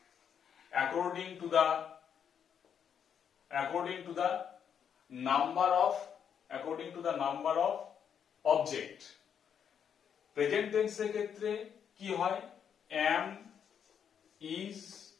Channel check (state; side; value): quieter; right; 8.0 dB